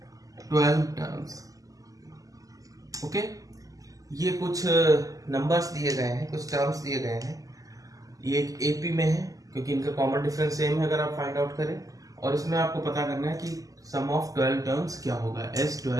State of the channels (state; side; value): late; left; 0.17 ms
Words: 12 टर्म्स। ओके, ये कुछ नंबर्स दिए गए हैं, कुछ टर्म्स दिए गए हैं। ये एक एपी में है क्योंकि इनका कॉमन डिफरेंस सेम है अगर आप फाइंड आउट करें। और इसमें आपको पता करना है कि सम ऑफ 12 टर्म्स क्या होगा,